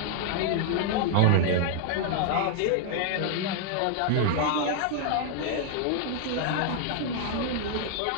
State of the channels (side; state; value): both; different; correlation 0.00